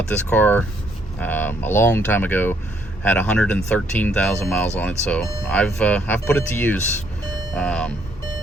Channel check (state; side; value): normal; both; correlation 0.69